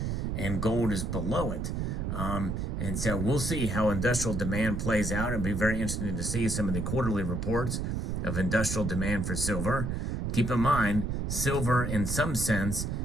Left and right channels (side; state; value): right; noise; rumble, 1 dB below the sound